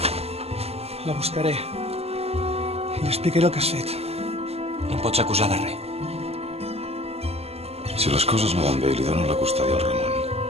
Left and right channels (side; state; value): left; late; 0.29 ms